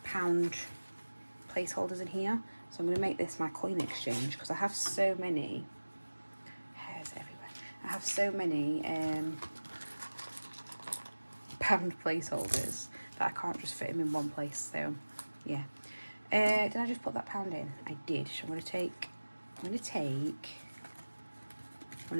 pound placeholders in here. So I'm going to make this my coin exchange because I have so many hairs everywhere. I have so many pound placeholders that I can't just fit them in one place. So yeah. Did I just put that pound in? I did. So I'm going to take one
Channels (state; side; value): inverted; both; correlation -1.00